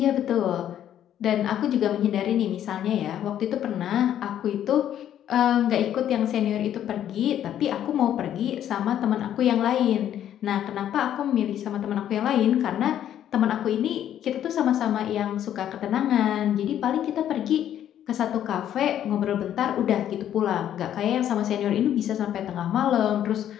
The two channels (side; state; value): right; quieter; 10.7 dB